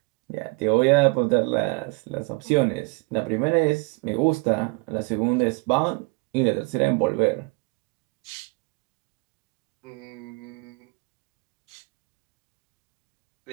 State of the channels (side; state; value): left; quieter; 29.1 dB